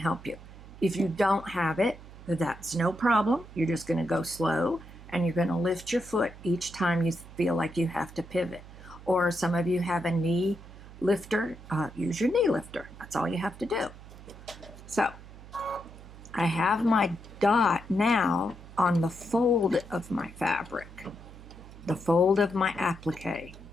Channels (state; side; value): noise; right; hum, 17 dB below the sound